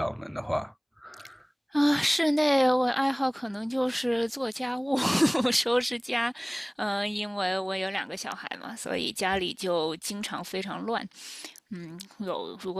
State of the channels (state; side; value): identical; both; correlation 1.00